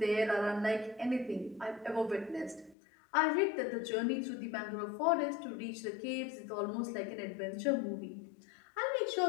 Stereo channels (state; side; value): drops out; right; at 2.8 s